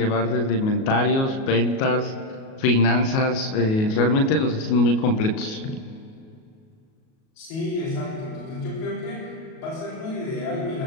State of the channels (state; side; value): late; right; 37 ms